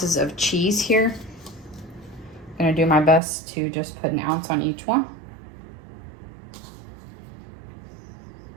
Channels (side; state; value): left; drops out; at 3.2 s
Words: of cheese here. I'm gonna do my best to just put 1 ounce on each one.